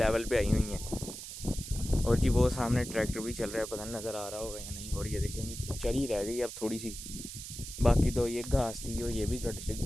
पे आई हुई हैं। और जी वो सामने ट्रैक्टर भी चल रहा है, पता नहीं नज़र आ रहा होगा या नहीं। और ये देखेंगे चरी रह गई अब थोड़ी सी, बाकी तो ये घास थी और ये भी कट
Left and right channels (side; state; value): right; noise; hiss, 10 dB below the sound